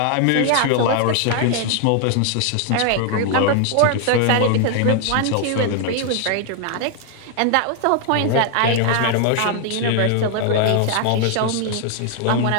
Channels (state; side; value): different; both; correlation 0.00